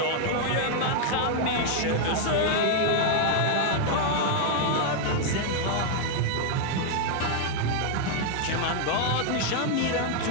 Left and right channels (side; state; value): both; different; correlation 0.00